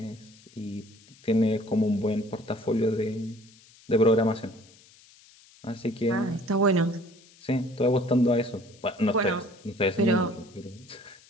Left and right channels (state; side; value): noise; left; hiss, 26 dB below the sound